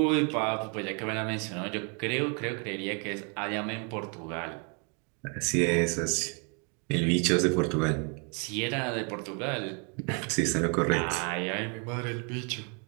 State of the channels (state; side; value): quieter; left; 36.9 dB